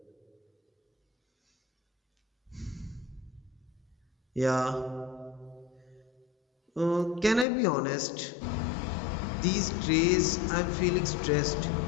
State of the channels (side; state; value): right; drops out; at 7.5 s